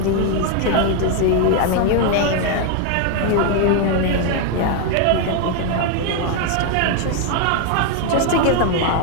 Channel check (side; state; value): both; different; correlation 0.01